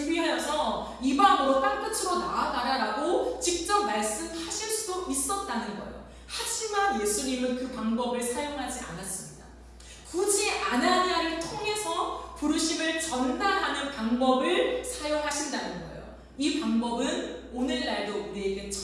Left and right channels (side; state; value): both; identical; correlation 1.00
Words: 이방으로 땅끝으로 나아가라 라고 직접 말씀하실 수도 있었다는 거예요. 하지만 예수님은 그 방법을 사용하지 않았습니다. 굳이 아나니아를 통해서 부르심을 전달하는 방법을 사용하신다는 거예요. 이 방법은 오늘날도 우리에게